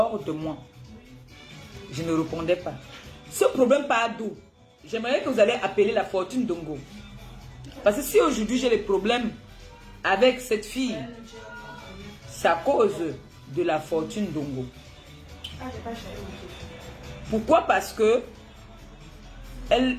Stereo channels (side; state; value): both; identical; correlation 1.00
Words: de moi. Je ne répondais pas. Ce problème part d'où? J'aimerais que vous allez appeler la fortune Dongo. Parce que si aujourd'hui j'ai des problèmes avec cette fille, c'est à cause de la fortune Dongo. Pourquoi? Parce que elle